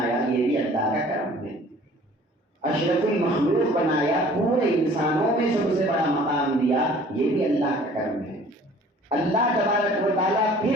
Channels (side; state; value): both; normal; correlation 0.51